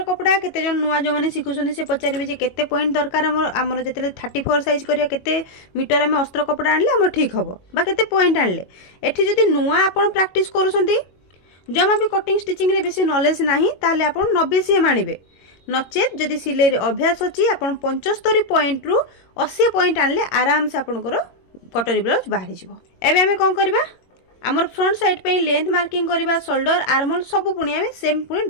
कपड़ा केते जन नुआ जो माने सिखुछन से पचारिबे जे केते पॉइंट दरकार हमर जेतेले 34 साइज करिया केते मीटर हम अस्त्र कपड़ा आनले हमर ठीक हबो बा केते पॉइंट आनले। एठी जदी नुआ आपण प्रैक्टिस करूसंती जमा भी कटिंग स्टिचिंग रे बेसी नॉलेज नाही ताले आपण 90 सीएम आनिबे। नचेत जदी सिलाई रे अभ्यास अछि आपण 75 पॉइंट रु 80 पॉइंट आनले आराम से आपनकर कटरी ब्लाउज बाहरी जिवो। एबे हमें कोन करबा आमर फ्रंट साइड पे लेंथ मार्किंग करबा, शोल्डर आर्महोल सब पुणी आमे सेम पुणी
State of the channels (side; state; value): right; late; 21 ms